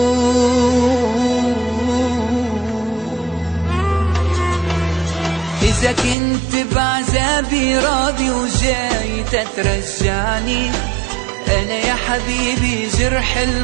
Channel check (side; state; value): left; drops out; at 6.2 s